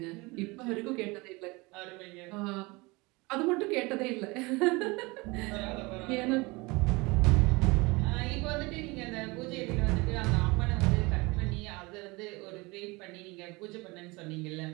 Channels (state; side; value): quieter; left; 24.9 dB